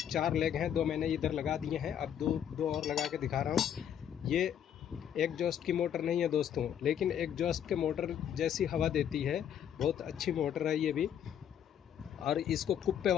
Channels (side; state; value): right; quieter; 9.3 dB